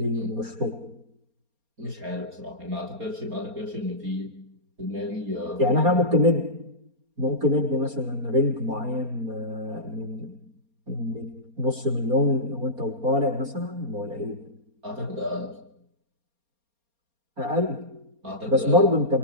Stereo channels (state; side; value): late; left; 4.3 ms